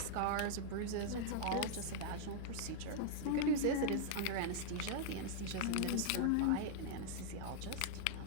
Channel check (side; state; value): both; different; correlation -0.01